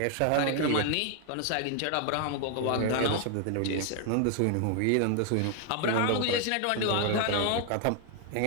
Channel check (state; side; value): different; both; correlation 0.00